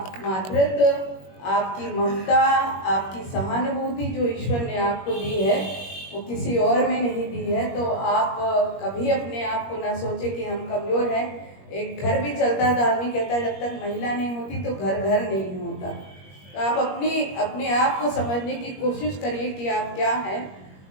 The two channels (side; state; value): right; late; 21 ms